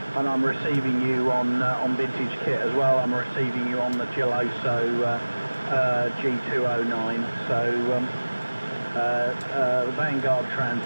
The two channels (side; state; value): both; inverted; correlation -1.00